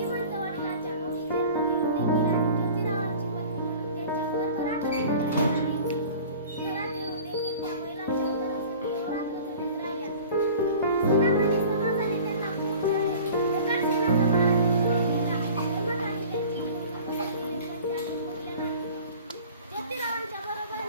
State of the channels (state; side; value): inverted; both; correlation -0.43